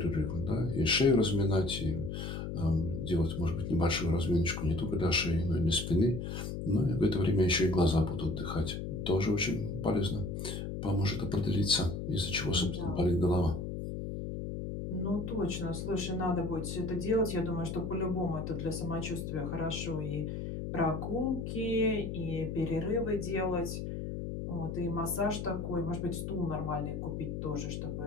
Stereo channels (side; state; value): left; noise; hum, 5 dB below the sound